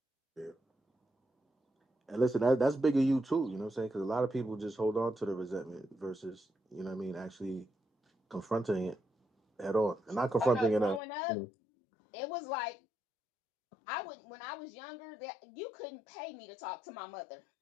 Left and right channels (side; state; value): right; drops out; at 11.0 s